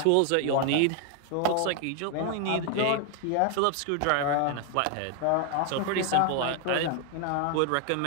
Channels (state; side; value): different; both; correlation 0.00